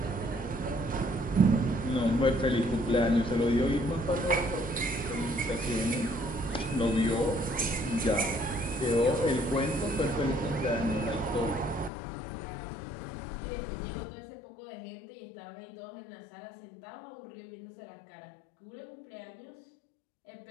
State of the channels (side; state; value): right; drops out; at 11.9 s